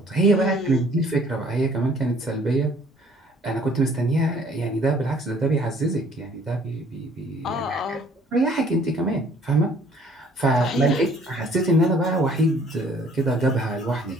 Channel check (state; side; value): normal; both; correlation 0.57